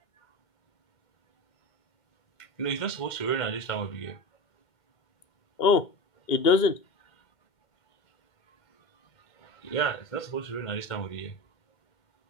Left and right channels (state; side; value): late; right; 2.2 ms